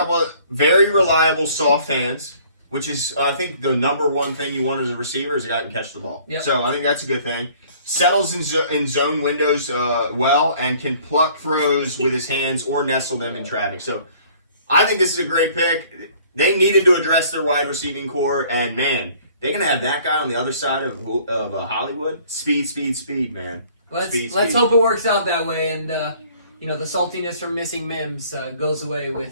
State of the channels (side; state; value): both; inverted; correlation -0.55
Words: of very reliable soft hands, which is I think the number one thing you want as a receiver is a guy who can catch the ball. Yep. So I think that's a good thing. Settles in zone windows well and can pluck throws with his hands or nestle them in traffic. So I think this is a great pick. They needed to address their wide receiving core, and man, they're gonna have that guy on the other side of Hollywood. Speed, man. Let's hope it works out that way, and the saltiness from missing Mims goes away